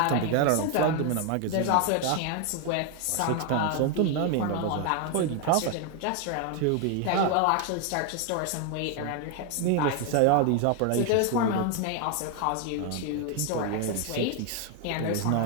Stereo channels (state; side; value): different; both; correlation 0.01